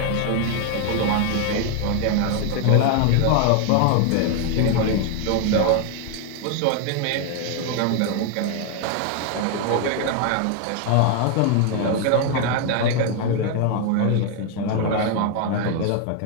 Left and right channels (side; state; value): both; different; correlation 0.00